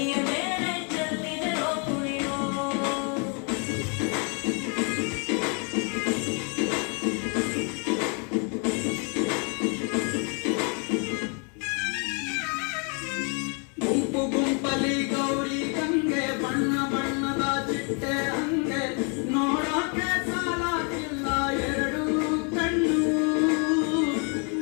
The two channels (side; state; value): right; quieter; 36.7 dB